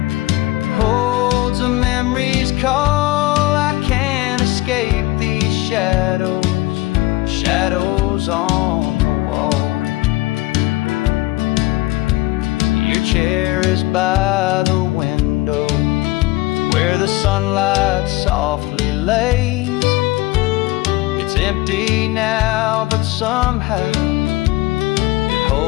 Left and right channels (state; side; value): quieter; right; 18.8 dB